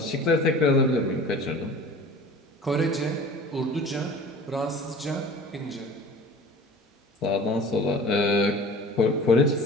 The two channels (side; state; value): both; normal; correlation 0.42